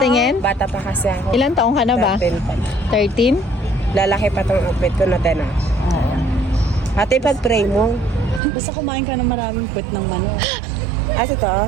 Bata pa kasi ako. Ilan taong ka na ba? 13 pa. 13? Lalaki pa tong outfit ko na tena. Oo. Ate, pag-pray mo. Basta kumain ka ng maraming puwet ng manok. Ito?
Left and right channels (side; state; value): left; drops out; at 8.4 s